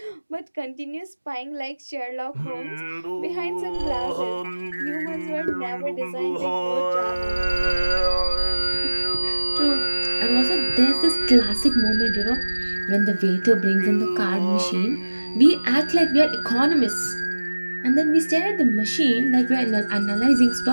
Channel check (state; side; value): inverted; both; correlation -1.00